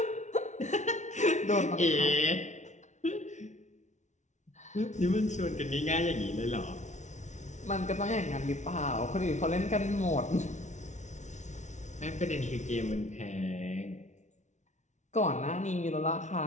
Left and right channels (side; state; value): right; late; 0.34 ms